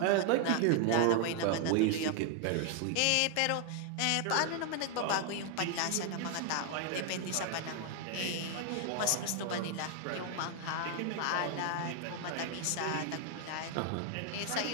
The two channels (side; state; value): both; different; correlation 0.00